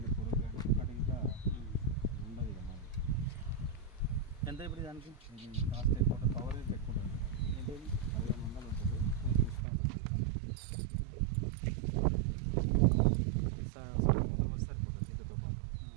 పురుగు కానీ ఒక్కటి ఇంకా ఉండదు ఇక మందు. ఎంత ఇప్పుడు దానికి కాస్ట్ ఎక్కువ కవరేజ్ ఎక్కువ ఉంటుంది. 1500 ఉంటుంది. డిస్కౌంట్ పాటు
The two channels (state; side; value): drops out; left; at 9.7 s